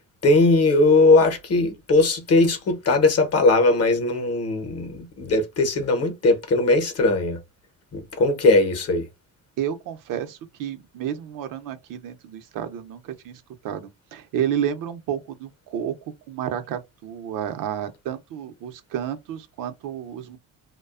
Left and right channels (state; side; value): normal; both; correlation 0.14